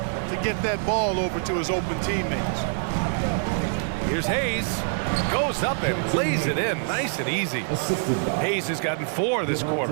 get that ball over to his open teammates. Here's Hayes. Goes up and lays it in. Nice and easy. Hayes has gotten 4 this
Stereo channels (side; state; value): left; silent; digital silence